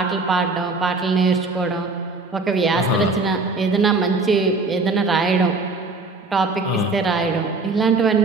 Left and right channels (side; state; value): left; quieter; 3.6 dB